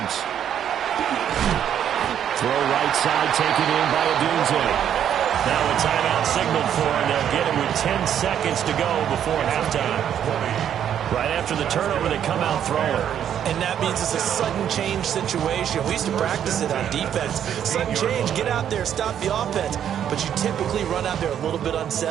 Throw right side taken in by Odunze. Now a timeout signaled for, and they'll get it with 10 seconds to go before halftime. Right after the turnover, they come out throwing. And that means it's a sudden change situation. We used to practice it on defense. Sudden change, get out there, stop the offense. But you typically run out there a little bit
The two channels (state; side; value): quieter; left; 9.5 dB